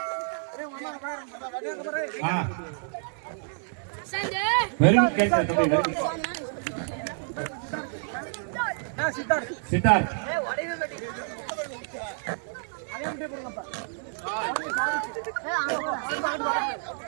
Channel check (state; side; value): silent; left; 59 dB below the other